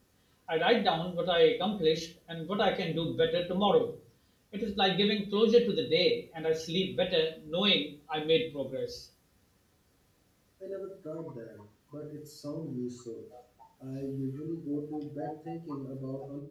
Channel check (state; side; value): identical; both; correlation 1.00